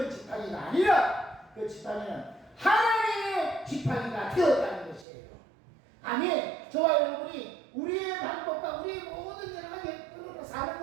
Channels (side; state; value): left; drops out; at 5.1 s